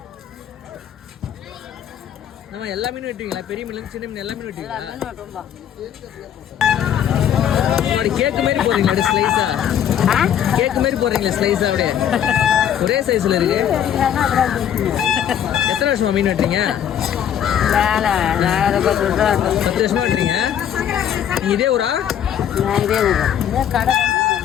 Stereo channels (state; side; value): quieter; right; 9.6 dB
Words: நம்ம எல்லா மீனும் வெட்டுவீங்களா? பெரிய மீன் சின்ன மீன் எல்லா மீனும் வெட்டுவீங்களா? கேக்கு மாதிரி போடுறீங்களா ஸ்லைஸா? கேக்கு மாதிரி போடுறீங்களா ஸ்லைஸா? அப்படியே ஒரே சைஸ்ல இருக்கு. எத்தனை வருஷமா மீன் வெட்டுறீங்க? 10 வருஷமா வெட்டுறீங்க. நீங்க இதே ஊரா? இதே ஊரா?